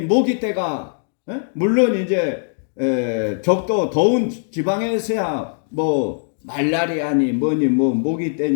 모기 때가 물론 이제 적도 더운 지방에서야 뭐 말라리아니 뭐니 뭐 모기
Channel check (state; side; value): silent; right; digital silence